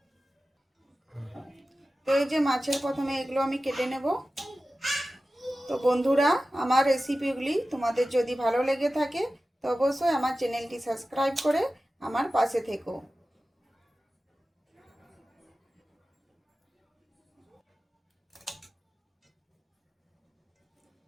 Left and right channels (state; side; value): normal; both; correlation 0.95